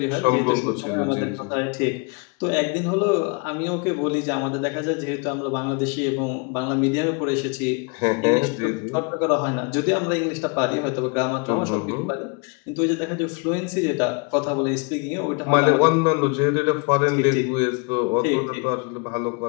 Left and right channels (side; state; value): right; quieter; 33.2 dB